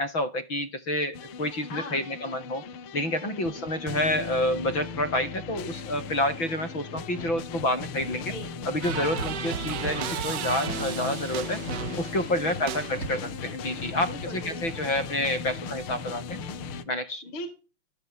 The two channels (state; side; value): late; right; 6.0 ms